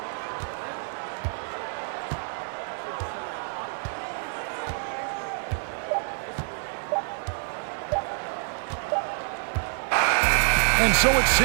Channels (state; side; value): silent; left; 60 dB below the other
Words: And so it's